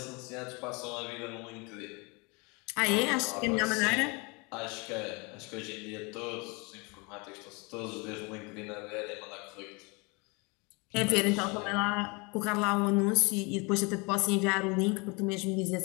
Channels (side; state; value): right; quieter; 29.0 dB